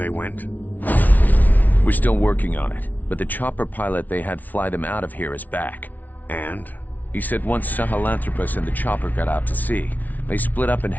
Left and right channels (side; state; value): right; late; 0.078 ms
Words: went? We're still working on it, but the chopper pilot they had fly them out of here is back. And? He said once Sahelanthropus and the chopper got out to sea, they split up and